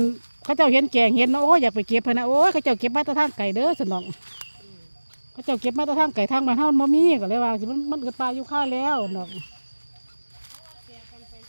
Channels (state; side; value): inverted; both; correlation -1.00